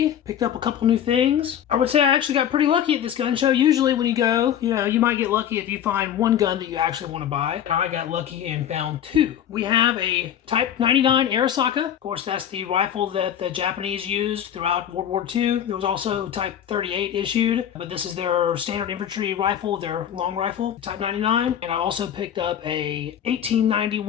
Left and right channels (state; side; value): quieter; right; 9.8 dB